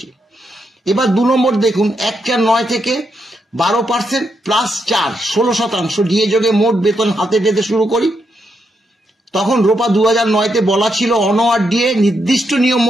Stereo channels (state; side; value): normal; both; correlation 0.81